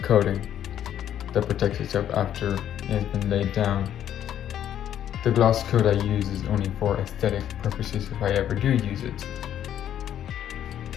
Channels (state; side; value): quieter; right; 10.5 dB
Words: coating that protects itself after it's been laid down. The gloss coat I use is only for aesthetic purposes if I ever do use it.